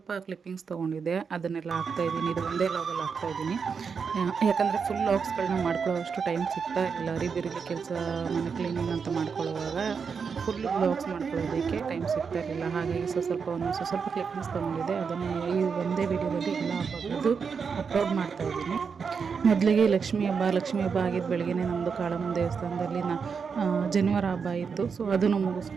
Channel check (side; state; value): left; quieter; 5.9 dB